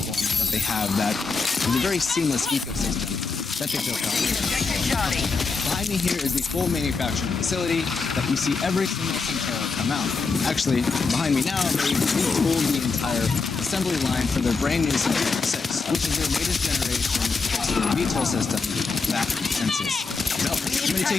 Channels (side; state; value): right; quieter; 4.5 dB